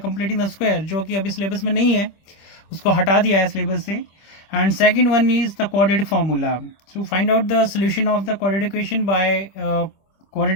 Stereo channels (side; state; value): right; late; 25 ms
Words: the square, जो कि अभी सिलेबस में नहीं है, उसको हटा दिया है सिलेबस से. And second one is the quadratic formula. So find out the solution of the quadratic equation by